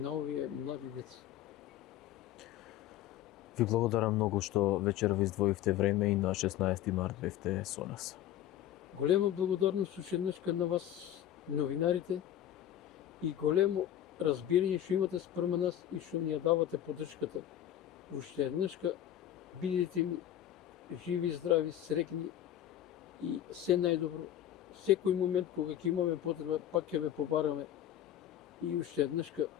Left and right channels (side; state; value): right; quieter; 11.6 dB